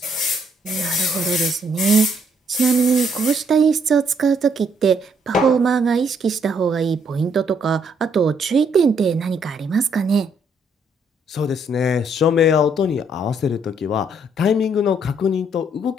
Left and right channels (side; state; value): both; normal; correlation 0.70